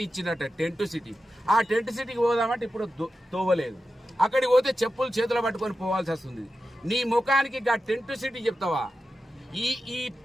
ఇచ్చిందట. టెంట్ సిటీ, ఆ టెంట్ సిటీకి పోదామంటే ఇప్పుడు తోవలేదు. అక్కడికి పోతే చెప్పులు చేతులు పట్టుకొని పోవాల్సి వస్తుంది. నీ ముఖానికి ఆ టెంట్ సిటీ చెప్తావా?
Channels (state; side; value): normal; both; correlation 0.91